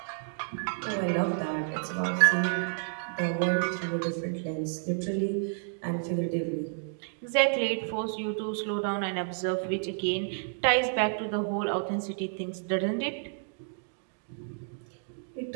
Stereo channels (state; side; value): silent; left; digital silence